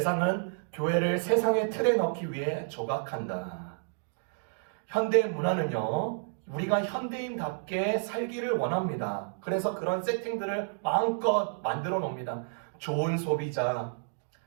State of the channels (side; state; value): left; silent; digital silence